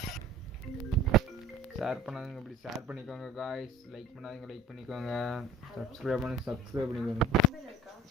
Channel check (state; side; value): normal; both; correlation 0.44